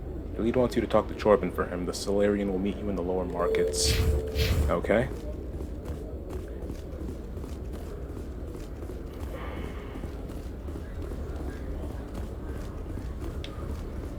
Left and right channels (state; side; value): identical; both; correlation 1.00